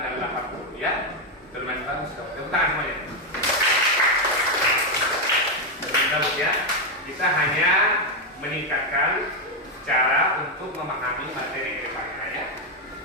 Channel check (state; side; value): normal; both; correlation 0.04